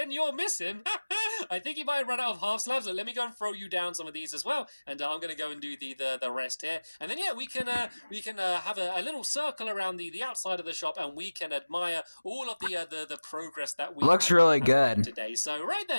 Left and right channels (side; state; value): both; inverted; correlation -1.00